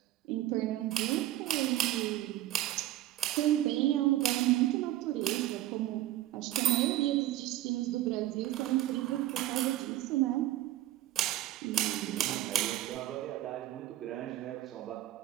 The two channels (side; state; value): left; quieter; 14.6 dB